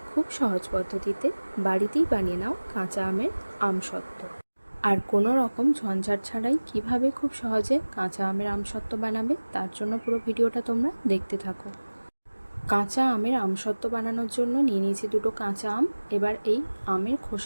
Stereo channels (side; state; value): both; inverted; correlation -1.00